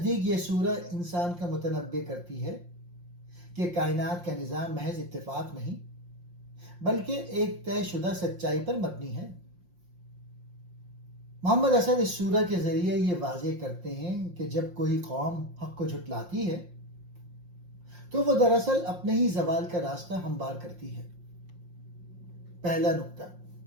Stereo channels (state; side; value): late; left; 5.7 ms